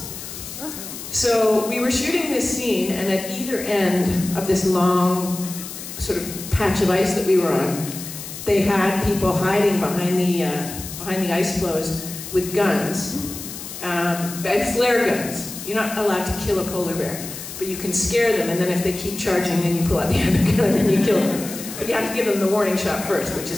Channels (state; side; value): noise; left; hiss, 10 dB below the sound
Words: So we were shooting this scene, and at either end of this long sort of patch of ice that we were on, they had people hiding behind the ice floes with guns. and flare guns. You're not allowed to kill a polar bear, but you can scare them, and then if they keep charging, then you pull out the other gun and you kill them. But you have to give them the warning shot first, which